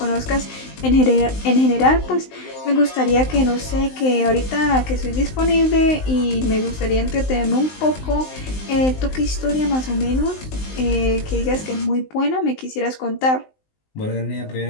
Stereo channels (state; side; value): late; right; 19 ms